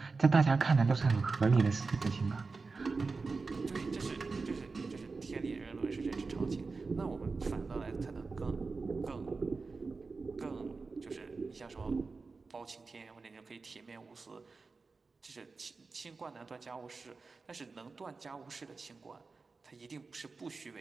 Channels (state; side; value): quieter; left; 4.2 dB